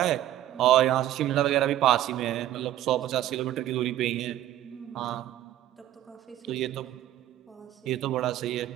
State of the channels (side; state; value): left; quieter; 13.1 dB